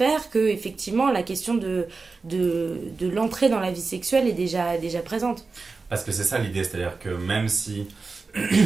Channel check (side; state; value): left; quieter; 4.2 dB